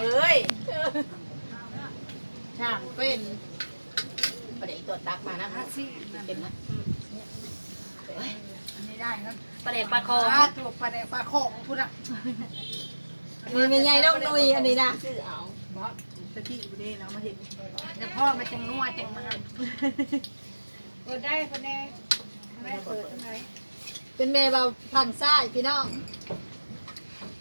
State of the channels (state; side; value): inverted; both; correlation -1.00